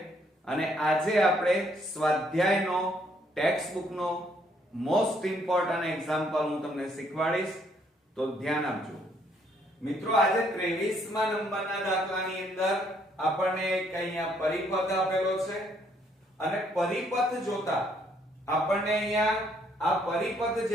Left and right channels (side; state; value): both; normal; correlation 0.68